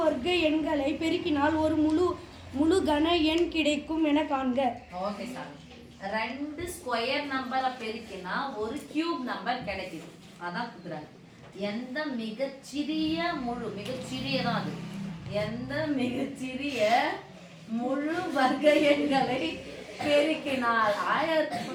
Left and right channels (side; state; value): both; identical; correlation 1.00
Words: வர்க்க எண்களை பெருக்கினால் ஒரு முழு கன எண் கிடைக்கும் என காண்க. Okay sir. ரெண்டு ஸ்கொயர் நம்பரை பெருக்கினா ஒரு கியூப் நம்பர் கிடைக்குது. அதான் குடுக்குறாங்க. எந்த மிகச்சிறிய மிகச்சிறியதான் அது. எந்த மிகச்சிறிய முழு வர்க்க எண்களை பெருக்கினால்